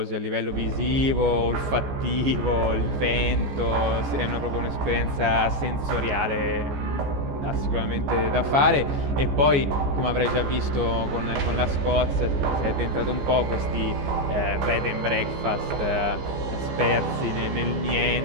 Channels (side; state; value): left; late; 14 ms